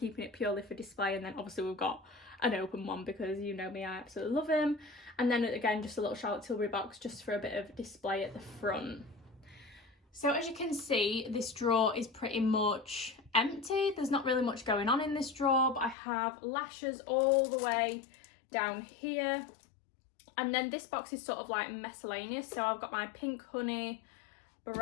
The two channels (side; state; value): right; drops out; at 16.0 s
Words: it purely for display, and then obviously we've got an open one because you know me, I absolutely love him. And then again, just a little Charlotte Tilbury box just for a bit of display at the front. So as you can see, this drawer is pretty much empty. There's not really much going on in this drawer, but I have lashes all the way down here. And then this box is sort of like miscellaneous. So I've got my Pink Honey